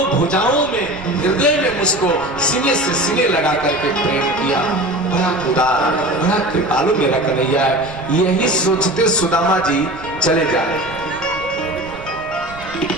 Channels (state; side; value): noise; right; rumble, 18 dB below the sound